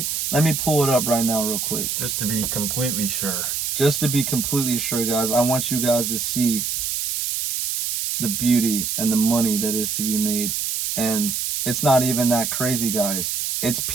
pull it up right now real quick. Just to be completely sure. Just to be completely sure, guys. I want you guys to see the beauty and the money that is to be made. And it's not even that crazy, guys. It's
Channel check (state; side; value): noise; right; hiss, 1 dB below the sound